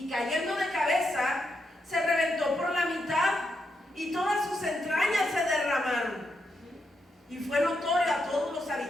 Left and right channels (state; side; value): normal; both; correlation 0.82